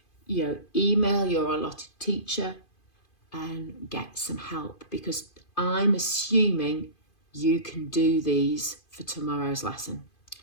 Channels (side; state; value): right; late; 2.5 ms